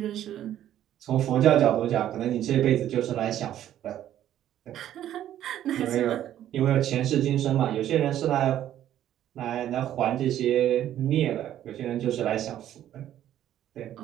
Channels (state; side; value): quieter; left; 11.7 dB